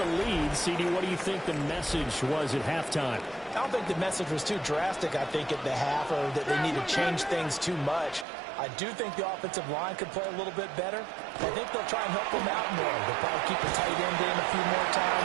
lead. CD, what do you think the message was at halftime? I don't think the message was too drastic, I think, at the half, or that they need to change things too much. I do think the offensive line could play a little bit better. I think they'll try and help them out more. They'll probably keep the tight end in a few more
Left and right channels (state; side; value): drops out; left; at 8.2 s